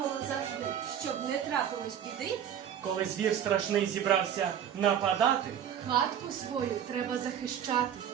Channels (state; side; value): quieter; left; 9.3 dB